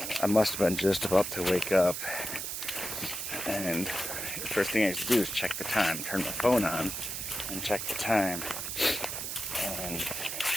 I must have been just about to wake up, and first thing I used to do is check the time, turn my phone on, and check the time. And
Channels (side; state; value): right; noise; hiss, 4 dB below the sound